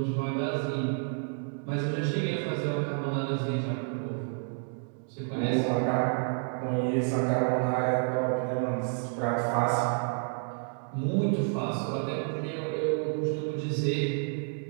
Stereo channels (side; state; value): left; silent; 58 dB below the other